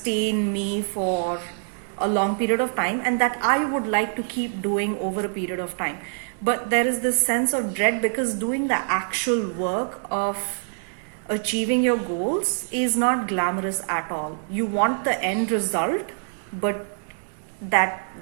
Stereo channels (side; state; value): left; silent; 62 dB below the other